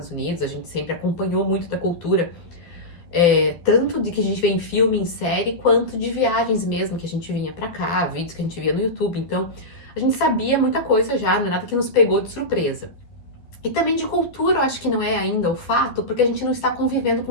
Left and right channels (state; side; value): late; right; 12 ms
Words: Unidos, a gente sempre acompanhou muito da cultura tanto de que a gente vê em filme, em série, quanto de viagens mesmo que a gente vinha pra cá, vídeos que a gente via no YouTube. Então, a gente sabia muita coisa já, não é nada que nos pegou de surpresa. E também de cultura, eu acho que não é ainda o fato, porque a gente não está convivendo